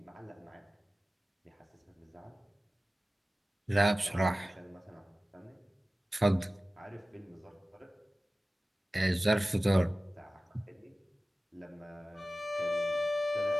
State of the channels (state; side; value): normal; both; correlation 0.96